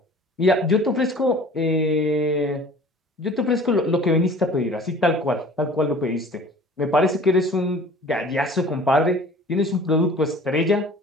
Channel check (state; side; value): normal; both; correlation 0.47